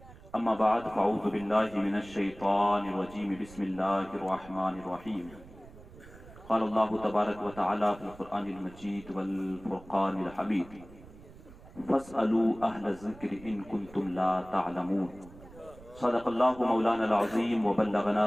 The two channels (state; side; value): noise; right; rumble, 20 dB below the sound